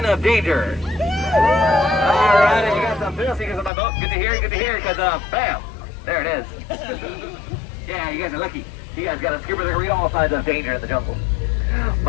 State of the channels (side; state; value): right; drops out; at 3.7 s